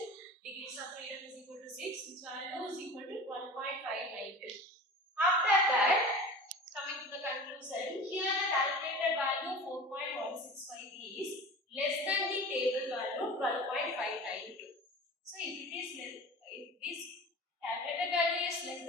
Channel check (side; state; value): both; normal; correlation 0.36